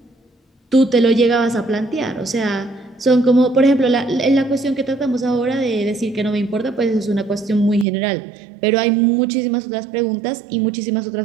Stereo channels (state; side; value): drops out; left; at 7.9 s